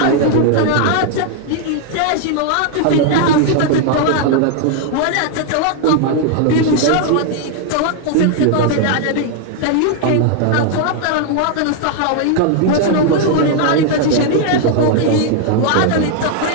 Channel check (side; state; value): both; different; correlation 0.00